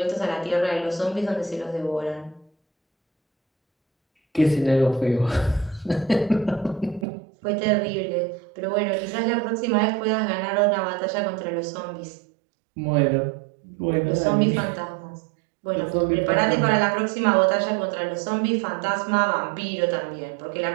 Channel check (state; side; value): drops out; left; at 7.1 s